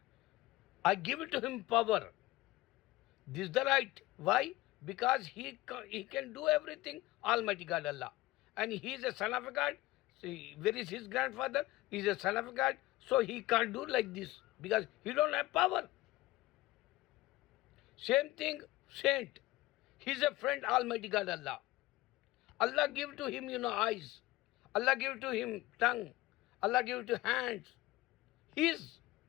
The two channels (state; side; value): quieter; right; 18.3 dB